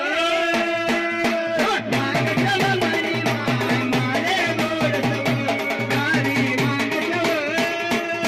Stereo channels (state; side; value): identical; both; correlation 1.00